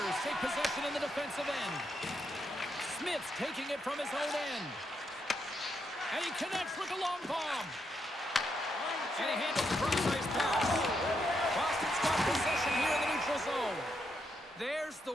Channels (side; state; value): both; normal; correlation 0.80